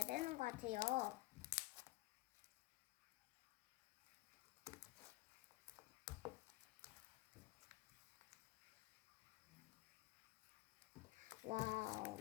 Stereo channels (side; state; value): right; quieter; 19.6 dB